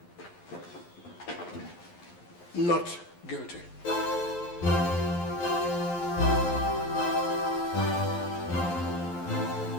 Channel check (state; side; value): late; right; 11 ms